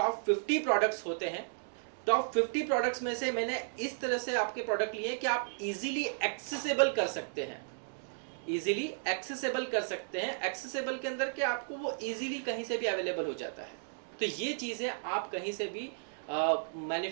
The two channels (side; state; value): left; silent; digital silence